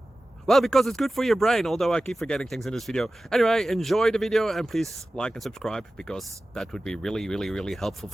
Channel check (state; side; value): normal; both; correlation 0.96